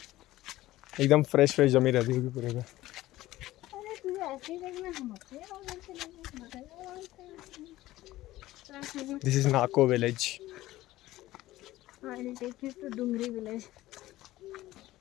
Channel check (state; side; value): quieter; right; 16.3 dB